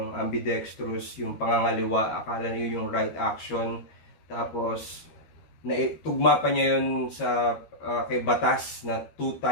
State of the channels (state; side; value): late; right; 13 ms